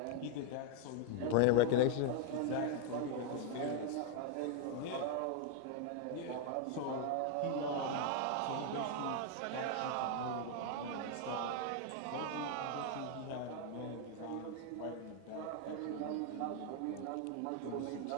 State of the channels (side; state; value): both; different; correlation 0.00